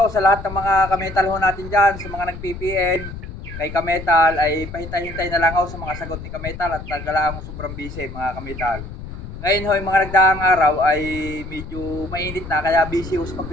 sa lahat ng mga kamital ho natin dyan, sa mga nag-PPN kay Kametal, ay pahintay-hintay na lang ho sa mga sagot ni Kametal at tagalaan ho sobrang busy mga kamital. Ngayon ho, yung mga nagdaang araw ay medyo mainit na kaya busy ho sa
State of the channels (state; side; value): noise; left; rumble, 11 dB below the sound